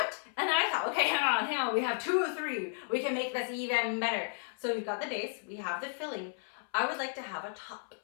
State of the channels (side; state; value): right; silent; 55 dB below the other